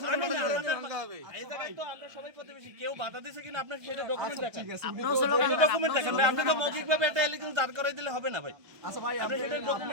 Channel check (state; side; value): late; left; 1.2 ms